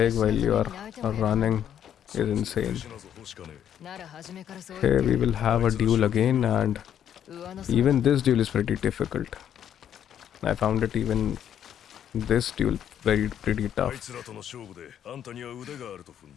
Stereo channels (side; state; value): right; quieter; 9.6 dB